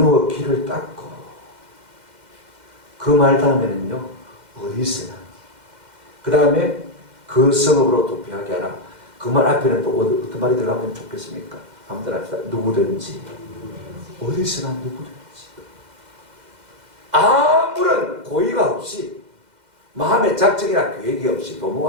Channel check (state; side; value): late; left; 2.1 ms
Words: 길을 닦고, 그 말 다음에는요, 어디서나, 그 다음에 그 성읍으로 도피하게 하라. 그 말 앞에는 또 어떤 말이 들어가면 좋겠습니까? 한번 합시다. 누구든지, 어디서나 누구든지, 아무런 고의가 없이, 마음의 작정이나 계획이 없이,